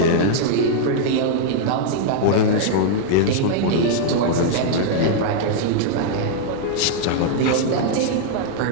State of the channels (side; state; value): both; different; correlation -0.01